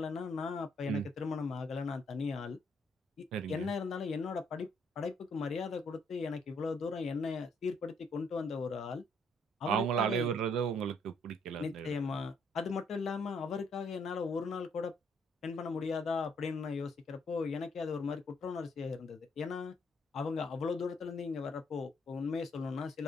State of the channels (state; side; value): normal; both; correlation 0.69